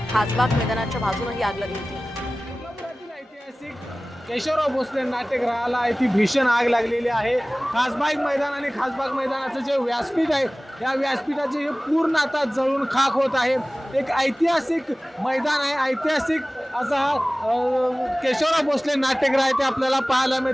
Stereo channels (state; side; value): normal; both; correlation 0.98